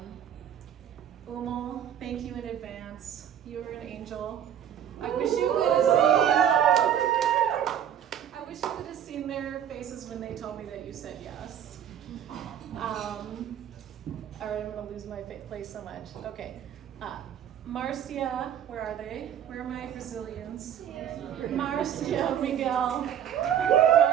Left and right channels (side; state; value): left; quieter; 9.7 dB